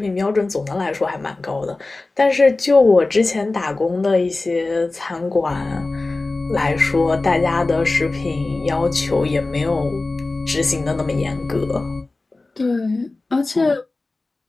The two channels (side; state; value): right; quieter; 3.3 dB